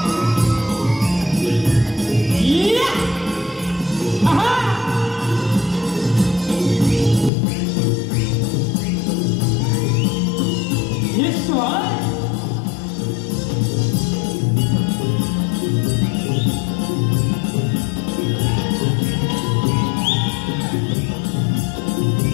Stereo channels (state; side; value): drops out; right; at 7.3 s